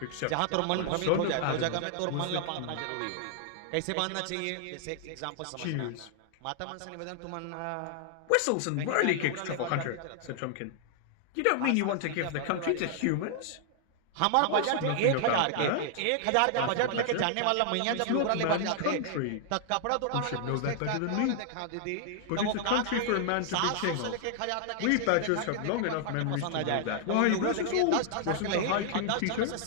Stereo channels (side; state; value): both; different; correlation -0.01